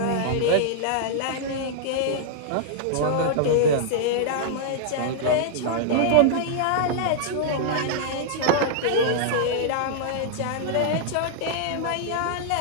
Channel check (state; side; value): different; both; correlation -0.01